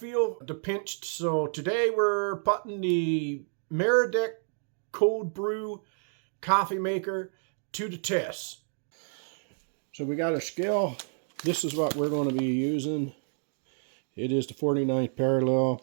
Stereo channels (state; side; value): silent; left; 58 dB below the other